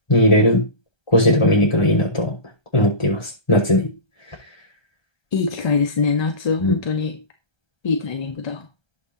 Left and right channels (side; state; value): right; late; 1.3 ms